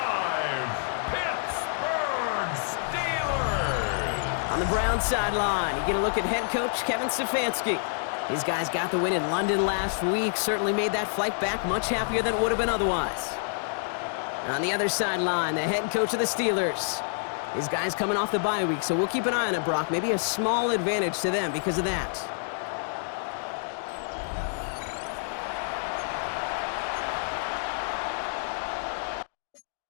Pittsburgh Steelers. On the Browns sideline, you get a look at head coach Kevin Stefanski. These guys got the win in London last week, certainly made that flight back much happier than it would have been otherwise. On the other sideline, the head coach of the Steelers. These guys coming off the bye week, so we'll keep an eye on it, Brock. Maybe a small advantage to them because of that.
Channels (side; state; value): right; silent; digital silence